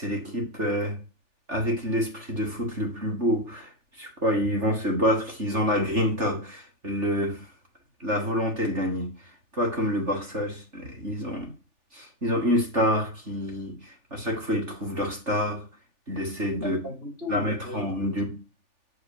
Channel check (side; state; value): left; late; 3.4 ms